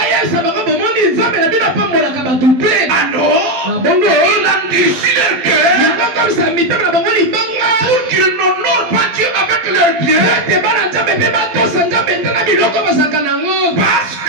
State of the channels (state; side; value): late; left; 12 ms